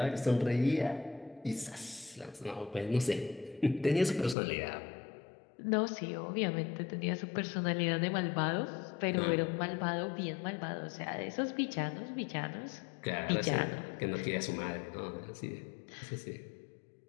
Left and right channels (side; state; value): right; drops out; at 4.4 s